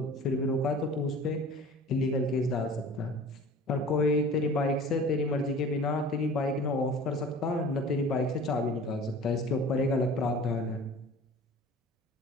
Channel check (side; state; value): both; normal; correlation 0.43